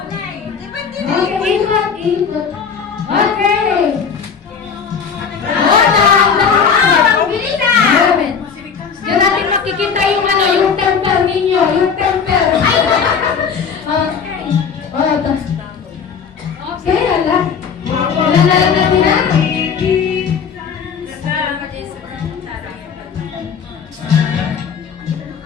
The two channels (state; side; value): quieter; right; 6.4 dB